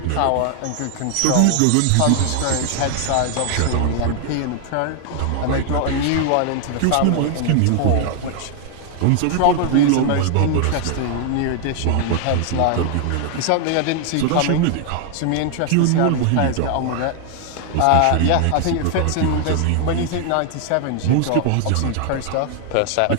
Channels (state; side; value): different; both; correlation 0.00